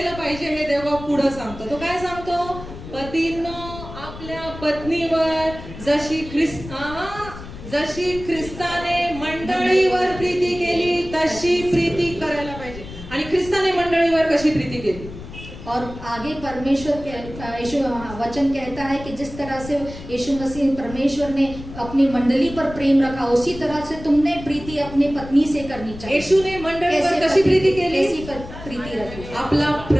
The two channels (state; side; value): noise; left; rumble, 13 dB below the sound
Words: पाहिजे हे देव पुढे सांगतो. तो काय सांगतो? पतींनो आपल्या पत्नीवर जशी ख्रिस्ताने मंडळीवर प्रीती केली तशी प्रीती करायला पाहिजे. आणि ख्रिस्ताने मंडळीवर कशी प्रीती केली? और आगे परमेश्वर यीशु वचन कहता है कि जिस तरह से यीशु मसीह परमेश्वर ने अपनी मंडली पर प्रेम रखा, उसी तरह से तुमने प्रीति अपने पत्नी से करनी चाहिए. येशूने मंडळीवर कशी प्रीती केली? कैसी प्रीति रखी? आपला